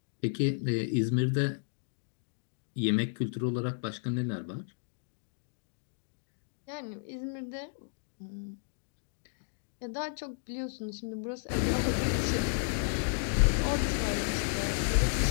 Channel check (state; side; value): silent; right; digital silence